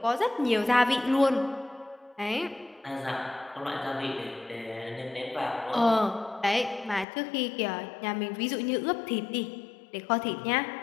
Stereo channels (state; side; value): drops out; right; at 7.1 s